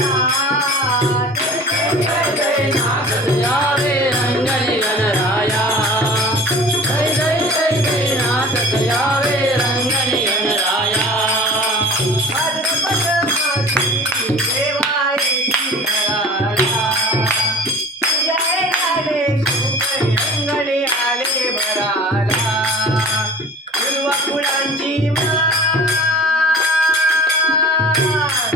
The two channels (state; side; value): normal; both; correlation 0.42